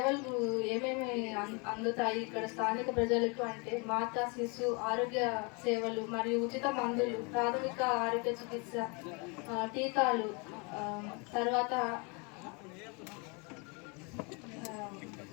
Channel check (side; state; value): right; quieter; 31.6 dB